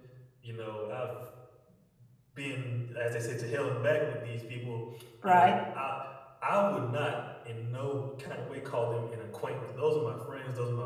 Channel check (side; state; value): both; identical; correlation 1.00